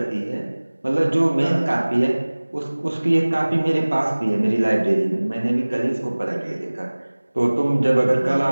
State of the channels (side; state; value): both; inverted; correlation -1.00